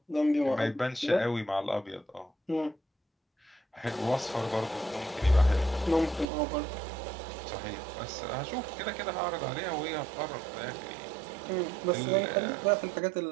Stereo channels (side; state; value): left; drops out; at 6.2 s